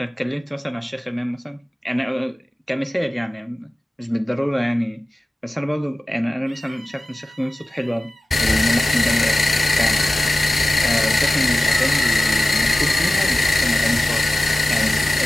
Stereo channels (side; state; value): both; normal; correlation 0.96